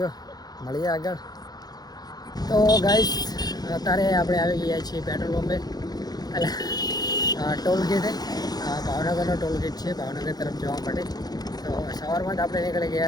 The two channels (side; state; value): right; late; 0.19 ms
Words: મળીએ આગળ. તો ગાઈસ અત્યારે આપણે આવી ગયા છીએ પેટ્રોલ પંપે, એટલે ટોલ ગેટે. ભાવનગરનો ટોલ ગેટ છે ભાવનગર તરફ જવા માટે. તો સવારમાં જ આપણે નીકળી